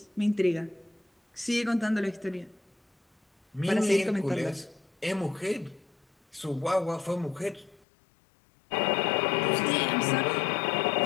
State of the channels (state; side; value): drops out; right; at 7.8 s